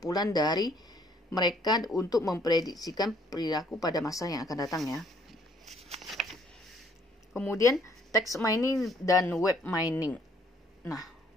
dari mereka untuk memprediksikan perilaku pada masa yang akan datang, ya. Kemudian text mining dan web mining. Nah,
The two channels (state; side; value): normal; both; correlation 0.64